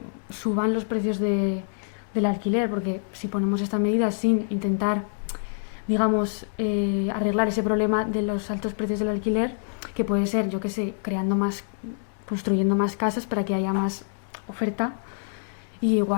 suban los precios del alquiler, porque si ponemos esta medida sin intentar, digamos, arreglar ese problema de los altos precios del alquiler, que puede ser, yo qué sé, construyendo más casas para que haya más oferta, y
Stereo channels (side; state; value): right; silent; digital silence